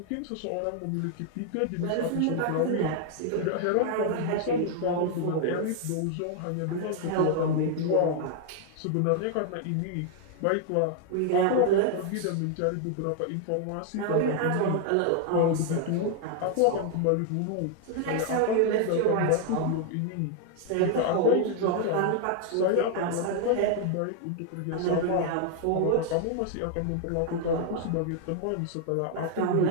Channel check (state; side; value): different; both; correlation 0.00